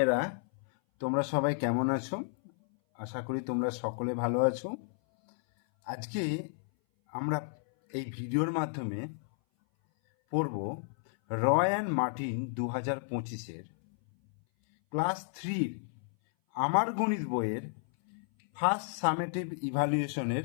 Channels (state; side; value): silent; right; 57 dB below the other